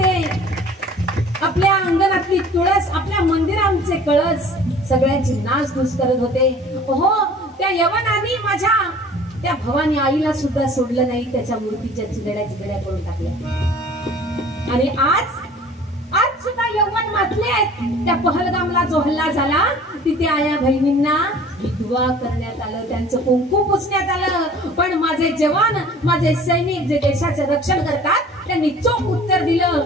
आपल्या अंगणातली तुळस आपल्या मंदिरांचे कळस सगळ्यांची नाचधूस करत होते हो त्या यवनाने माझ्या त्या भवानी आईला सुद्धा सोडलं नाही त्याच्या मूर्तीच्या चिगड्या करून टाकल्या आणि आज सुद्धा यौवन मातले आहेत त्या पहलगामला जो हल्ला झाला तिथे आया बहिणींना विधवा करण्यात आलं त्यांचं कुंकू पुसण्यात आलं पण माझे जवान माझे सैनिक जे देशाचे रक्षण करतात त्यांनी चोख उत्तर दिलं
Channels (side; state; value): both; normal; correlation 0.48